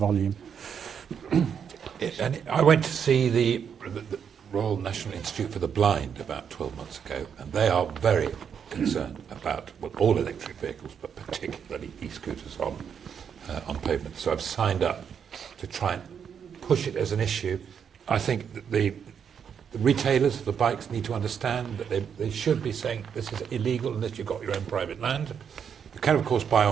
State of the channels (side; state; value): left; quieter; 7.5 dB